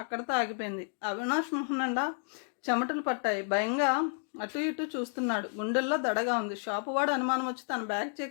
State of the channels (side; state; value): right; silent; 57 dB below the other